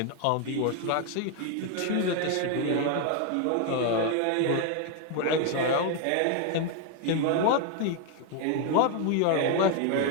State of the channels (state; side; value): different; both; correlation 0.00